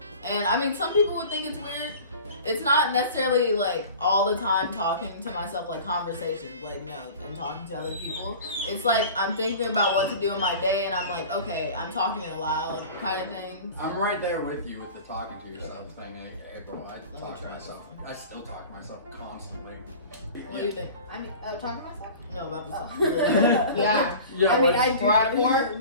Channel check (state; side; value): inverted; both; correlation -0.40